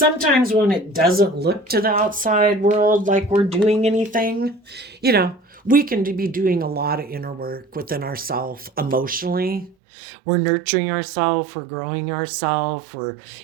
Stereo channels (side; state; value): left; drops out; at 9.8 s